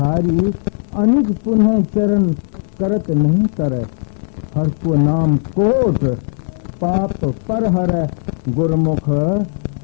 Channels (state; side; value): silent; right; 68 dB below the other